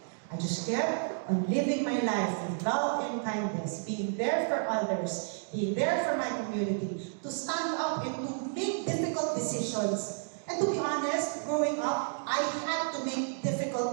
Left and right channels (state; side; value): silent; left; digital silence